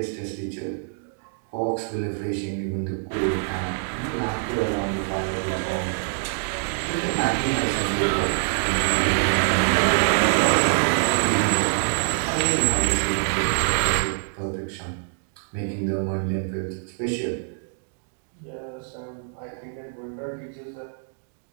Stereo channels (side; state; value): left; silent; digital silence